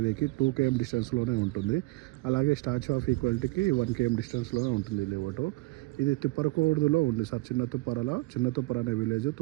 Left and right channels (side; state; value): left; quieter; 22.7 dB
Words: 2 km డిస్టెన్స్లోనే ఉంటుంది. అలాగే స్టాచ్యూ ఆఫ్ ఈక్వాలిటీకి 1 km డిస్టెన్స్లోనే ఉంటుంది లేవటు. ఇది తుప్పరకూర్దులో ఉంది సార్. చిన్న తుప్పర అనే విలేజ్